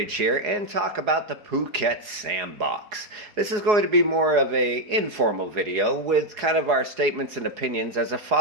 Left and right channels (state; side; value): late; left; 4.8 ms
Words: here and talk about the Phuket Sandbox. This is going to be more of an informal video with kind of our statements and opinions as a